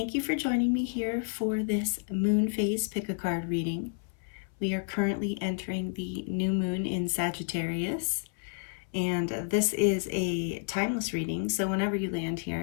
you for joining me here for this moon phase pick-a-card reading. We are currently entering the new moon in Sagittarius, and this is a timeless reading, so whenever you land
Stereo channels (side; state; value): right; silent; 58 dB below the other